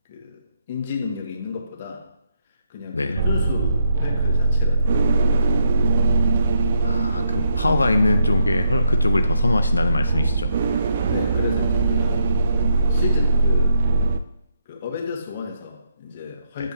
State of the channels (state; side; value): inverted; both; correlation -0.77